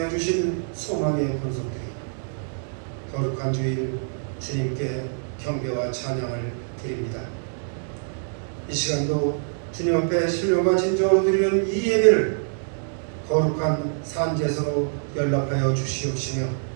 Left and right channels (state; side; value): silent; left; digital silence